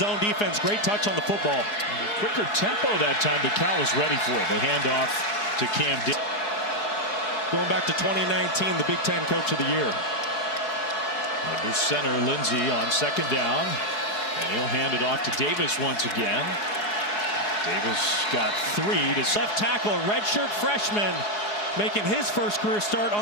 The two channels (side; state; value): right; late; 4.8 ms